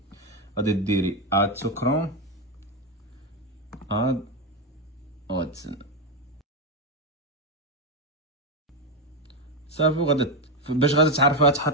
غادي ديري اد تو كروم اد واتسن صافي. وغادي باش غادي تعرفها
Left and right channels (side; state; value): both; normal; correlation 0.07